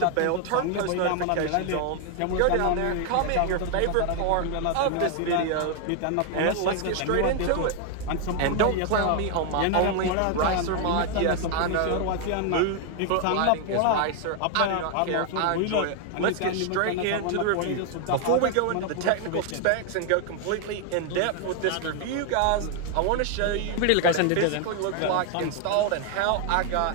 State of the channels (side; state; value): both; different; correlation 0.00